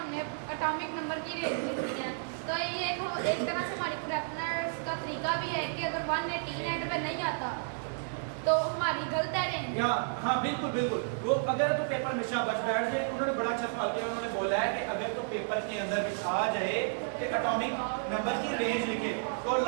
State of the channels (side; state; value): left; silent; 56 dB below the other